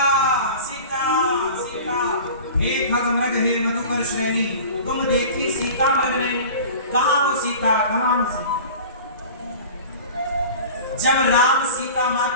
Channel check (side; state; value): both; inverted; correlation -0.38